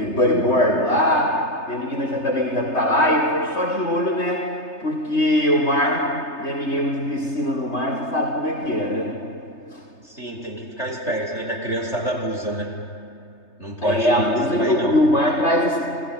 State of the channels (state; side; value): late; right; 3.3 ms